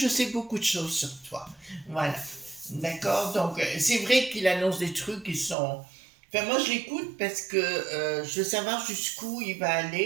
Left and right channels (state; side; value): drops out; left; at 5.6 s